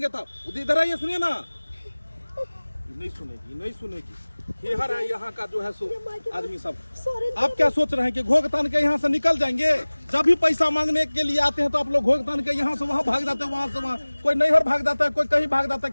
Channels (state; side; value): inverted; both; correlation -1.00